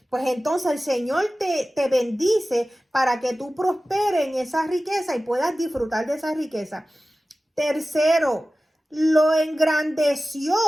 Pues entonces el Señor te bendice para que tú prosperes en esa riqueza y puedas disfrutar de esa riqueza. Tercero, lo engrandeció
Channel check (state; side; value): normal; both; correlation 0.96